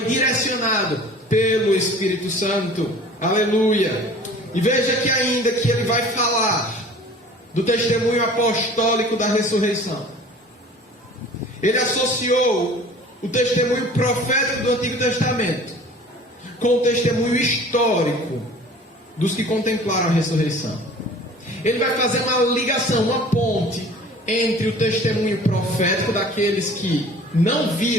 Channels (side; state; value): both; normal; correlation 0.46